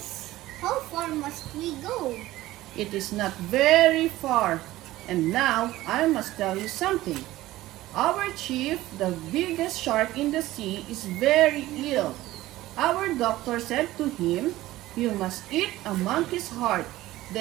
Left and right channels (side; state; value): left; quieter; 16.5 dB